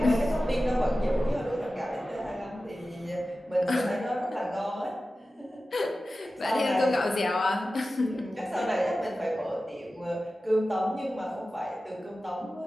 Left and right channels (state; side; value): normal; both; correlation 0.94